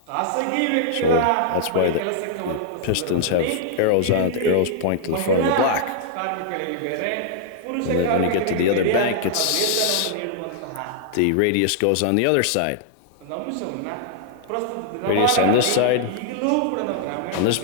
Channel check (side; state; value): both; different; correlation -0.01